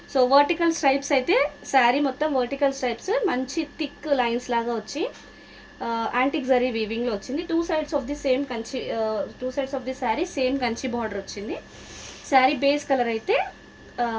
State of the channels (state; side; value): identical; both; correlation 1.00